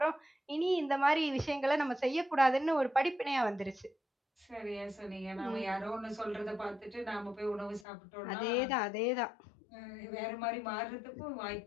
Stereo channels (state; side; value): drops out; right; at 7.9 s